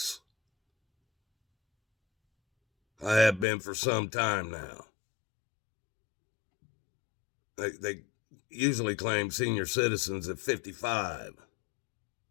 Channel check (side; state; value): right; drops out; at 3.5 s